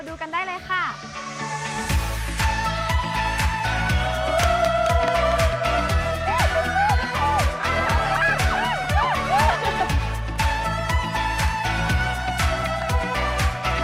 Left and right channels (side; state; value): both; identical; correlation 1.00